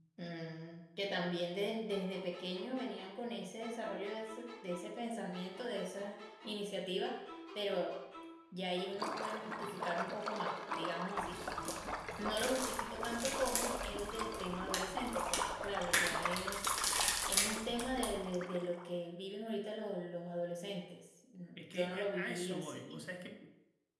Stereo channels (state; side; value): identical; both; correlation 1.00